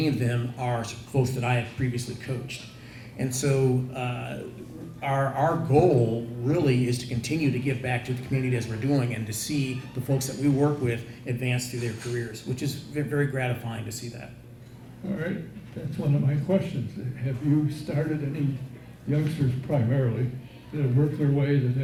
of them are folks that I have previously coached. And so our goal really is to continue to give back to the community as we're doing and to see the folks that we work with advance through their careers, which is very gratifying to see that. All right, that's one of my questions. Have you started any youngsters primarily that have worked their way, that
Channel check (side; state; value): both; identical; correlation 1.00